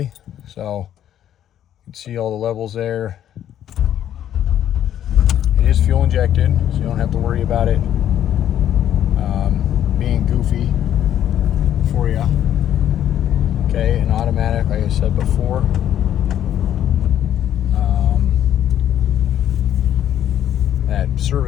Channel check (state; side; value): quieter; right; 10.8 dB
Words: so you can see all the levels there. It is fuel injected, so you don't have to worry about it being goofy for you. Okay, and automatic, like I said before. That